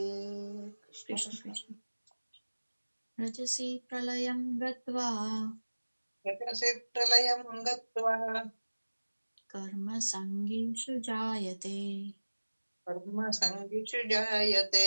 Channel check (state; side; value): inverted; both; correlation -1.00